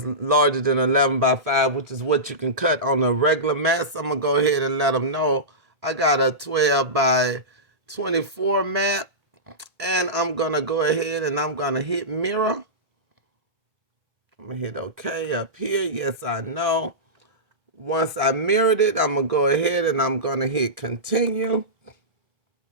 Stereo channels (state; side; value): late; left; 1.8 ms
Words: larger than 11 by 5, which is what you can cut on a regular mat. So I'm going to go ahead and let them know I got a 12 by 24 mat. And I'm going to go ahead and I'm going to hit mirror. I'm going to hit OK up here. Yes, I know. Once I mirrored it, I'm going to go ahead and I'm going to hit continue.